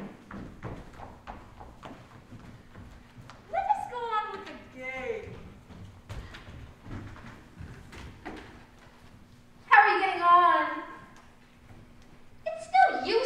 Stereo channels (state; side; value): identical; both; correlation 1.00